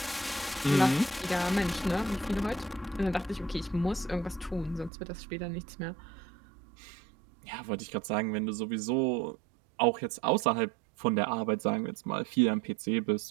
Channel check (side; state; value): left; drops out; at 4.9 s